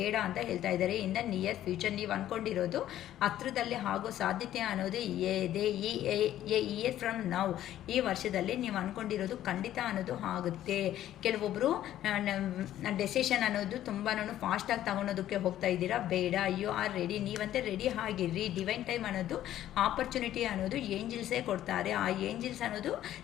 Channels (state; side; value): quieter; right; 12.5 dB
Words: ಅಂತ ಹೇಳ್ತಾ ಇದ್ದಾರೆ. ಇನ್ ದ ನಿಯರ್ ಫ್ಯೂಚರ್ ನೀವು ಅಂದ್ಕೊಂಡಿರೋದು ಹತ್ರದಲ್ಲೇ ಆಗೋ ಸಾಧ್ಯತೆ ಅನ್ನೋದು ಇದೆ. ಇಯರ್ ಫ್ರಮ್ ನೌ, ಈ ವರ್ಷದಲ್ಲಿ ನೀವು ಅಂದ್ಕೊಂಡಿರೋದು ಖಂಡಿತ ಅನ್ನೋದು ಆಗುತ್ತೆ. ಕೆಲವೊಬ್ಬರು ಡೆಸಿಷನ್ ಅನ್ನೋದು ತುಂಬಾ ಫಾಸ್ಟಾಗಿ ತಗೊಳೋದಕ್ಕೆ ಹೋಗ್ತಾ ಇದ್ದೀರಾ. ಬೇಡ, ಯು ಆರ್ ರೆಡಿ. ನೀವಂತೆ ರೆಡಿ ಆಗಿರ್ರಿ. ಡಿವೈನ್ ಟೈಮ್ ಅನ್ನೋದು ಆಪರ್ಚುನಿಟಿ ಅನ್ನೋದು ಏಂಜಲ್ಸೇ ಕೊಡ್ತಾರೆ. ಆ ಏಂಜಲ್ಸ್ ಅನ್ನೋದು